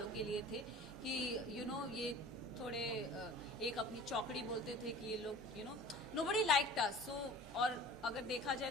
के लिए थे कि ये थोड़े एक अपनी चौकड़ी बोलते थे कि ये लोग नोबडी लाइक्ड अस सो और अगर देखा जाए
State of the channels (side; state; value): both; normal; correlation 0.42